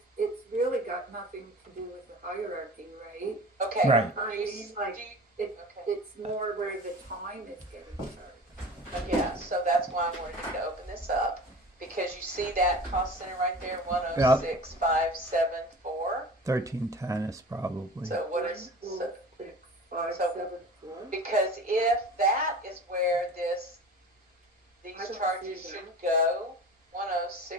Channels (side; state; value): both; normal; correlation 0.38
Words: it's really got nothing to do with the hierarchy, right? Okay. Right. I mean, like, Okay. it's more where the time is getting charged. Yeah, so that's why I wanted you to open this up, because you see that cost center right there, 106,574. 1310 is probably. So what is, One, so, 6, 5, so- 7, 4. because if that is where I these don't charges see that. should go,